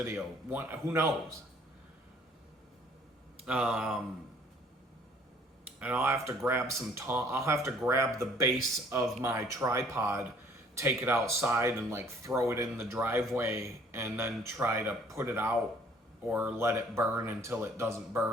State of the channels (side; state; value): both; normal; correlation 0.57